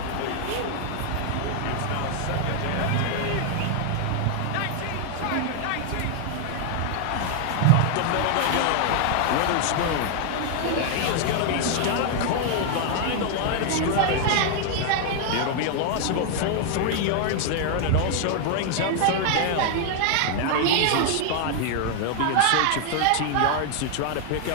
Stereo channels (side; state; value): both; different; correlation 0.00